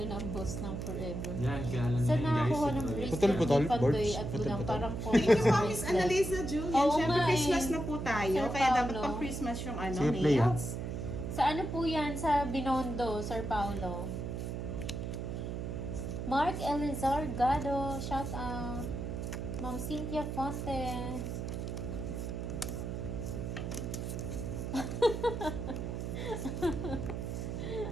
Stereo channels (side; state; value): right; noise; hum, 4 dB below the sound